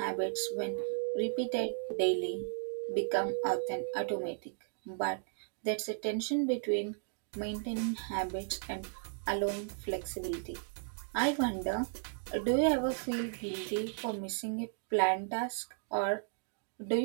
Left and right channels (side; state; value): left; silent; digital silence